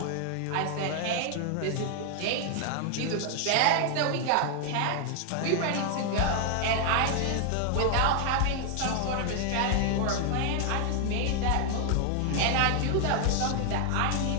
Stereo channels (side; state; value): both; different; correlation 0.00